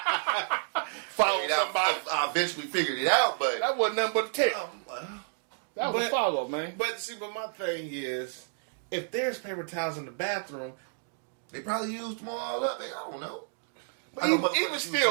Follow I mean, somebody. I eventually figured it out, but That wasn't nothing but a tell. That was a but- follow, man. but my thing is, if there's paper towels in the bathroom, they probably used them all up. I don't know. But I know even motherfuckers use still,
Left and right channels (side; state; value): left; silent; 58 dB below the other